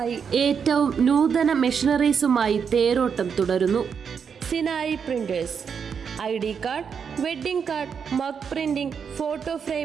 ഏറ്റവും നൂതന മെഷീനറീസുമായി തേരോട്ടം തുടരുന്നു. Sinai Printers ID card, wedding card, mug printing, photo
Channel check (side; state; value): left; quieter; 6.7 dB